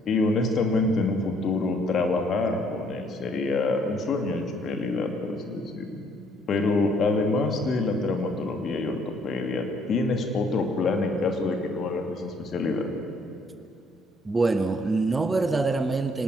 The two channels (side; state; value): both; normal; correlation 0.65